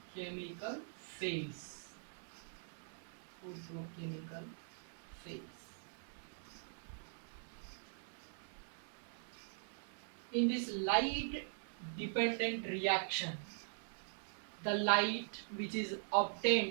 phase. Photochemical phase. In this light dependent reaction, the light which is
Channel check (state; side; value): silent; left; digital silence